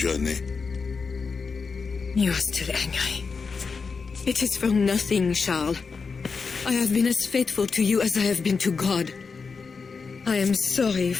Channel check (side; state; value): right; quieter; 5.0 dB